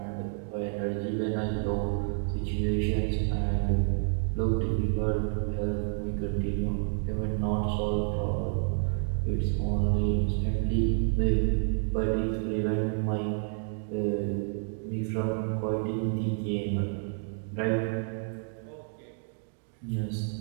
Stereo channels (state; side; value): silent; left; 58 dB below the other